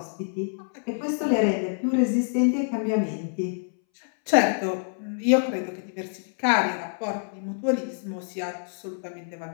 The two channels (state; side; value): silent; right; 61 dB below the other